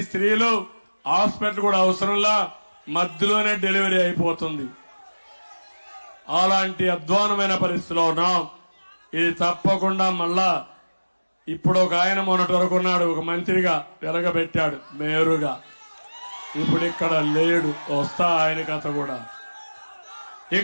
స్త్రీలు హాస్పిటల్ కూడా అవసరంలా మధ్యలోనే డెలివరీ అయిపోతుంది. అలాంటి అధ్వానమైన పరిస్థితిలో ఉన్నాం. ఇది తప్పకుండా మళ్ళా ఇప్పుడు ఒక ఆయన మొన్నటి వరకు ఉన్నాడు, ఒక మంత్రిగా వెలగబెట్టాడు మేరుగా. ఇప్పుడు ఇక్కడ లేడు, వస్తా ఆయన కథ కూడా.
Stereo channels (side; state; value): both; inverted; correlation -1.00